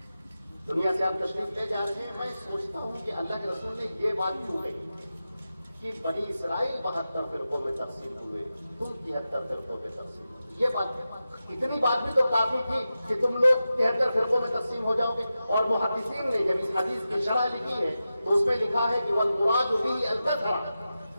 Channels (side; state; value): both; inverted; correlation -0.92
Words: دنیا سے آپ تشریف لے جا رہے ہیں، میں سوچتا ہوں کہ اللہ کے رسول نے یہ بات کیوں کہی کہ بنی اسرائیل 72 فرقوں میں تقسیم ہوئے، تم 73 فرقوں میں تقسیم ہوئے۔ یہ بات، اتنی بات بھی تو کافی تھی کہ تم لوگ 73 فرقوں میں تقسیم ہو جاؤ گے۔ اور محدثین نے جب اس حدیث کی شرح لکھی ہے تو اس میں لکھا ہے کہ والمراد به الکثرۃ،